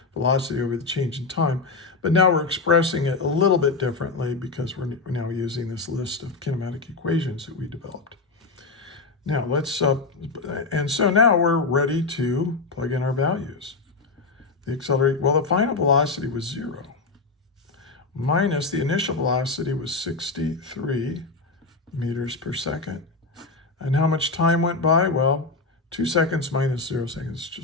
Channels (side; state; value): right; quieter; 3.9 dB